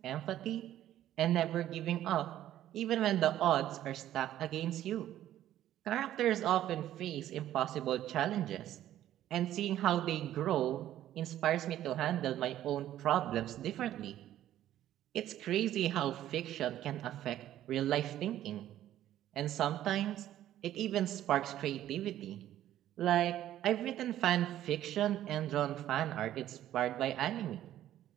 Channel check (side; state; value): left; quieter; 12.5 dB